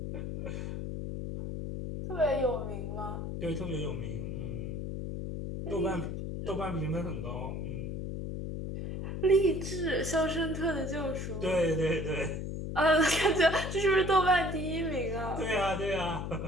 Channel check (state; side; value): noise; left; hum, 5 dB below the sound